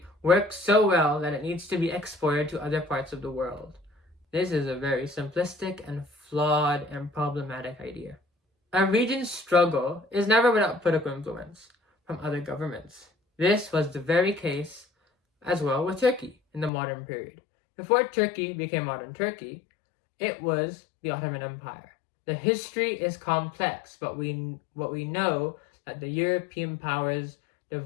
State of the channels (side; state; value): right; drops out; at 16.7 s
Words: works so well that it needs to be exported to other parts of the world. This is a very simplistic and flawed and problematic idea. A region's struggle is never without political influence from other governments. This was the very case as well with Turkey in the modern period. Before Turkey became modern Turkey, it was the Ottoman Empire. The history is complex, but what we know that the European powers